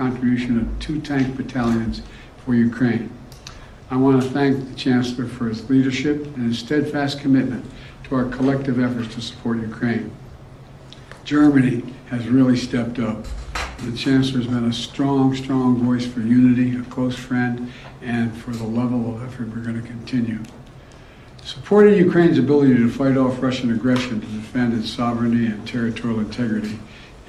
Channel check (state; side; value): identical; both; correlation 1.00